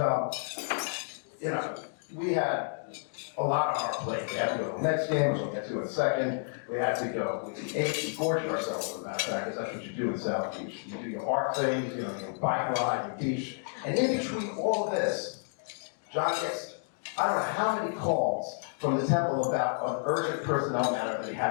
we had a lot on our plate. We had to go to the next game, which we'll get to in a second. We had to go, we ate, we gorged ourselves, as a matter of fact, because that's what you do in South Beach. You do your art things, your bike ride, your beach. And in between all of this, John gets, I don't know how many calls from the temple about an urgent personnel matter that he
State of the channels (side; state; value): right; silent; 57 dB below the other